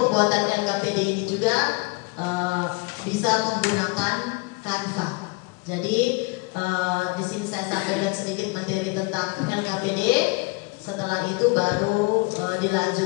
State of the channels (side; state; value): right; quieter; 26.6 dB